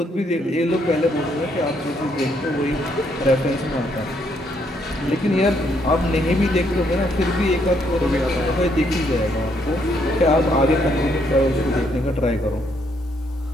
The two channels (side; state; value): both; normal; correlation 0.72